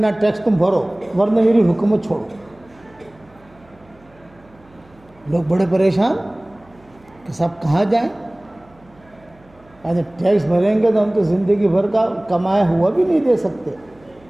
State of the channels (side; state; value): right; noise; hum, 29 dB below the sound